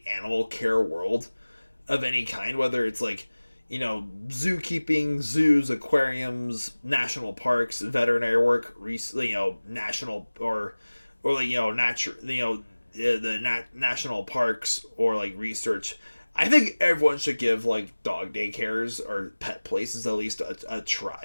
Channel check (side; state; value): both; inverted; correlation -1.00